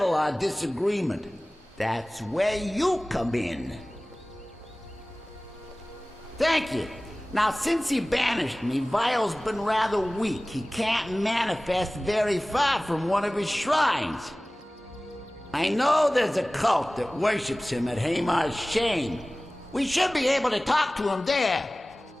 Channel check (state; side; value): normal; both; correlation 0.98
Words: our disagreement. That's where you come in. Thank you. Now, since he banished me, Vile's been rather weak. He can't manifest very far from one of his shrines. I know there's a cult that worships him at Hamar's Shame. We should be able to talk to him there.